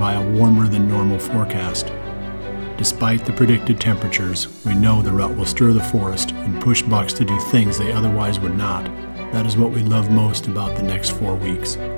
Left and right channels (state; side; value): inverted; both; correlation -1.00